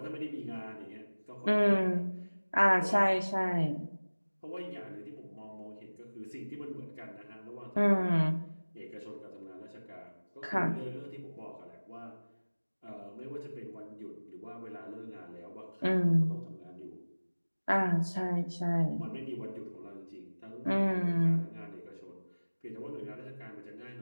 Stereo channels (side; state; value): both; inverted; correlation -1.00